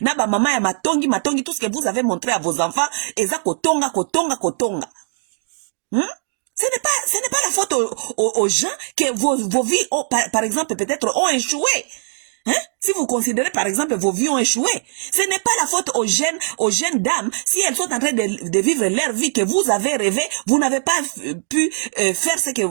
na ba mama ya matongi, tout ce que vous avez montré à vos enfants, eza kotonga. Ce n'est pas la faute aux gens que vos vies, par exemple, peut-être ont échoué. Hein? Si vous considérez, par exemple, vos vies ont échoué, ce n'est pas la faute aux jeunes dames, si elles sont en train de vivre leur vie que vous avez rêvé, vous n'avez pas pu faire ce que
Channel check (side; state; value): left; silent; digital silence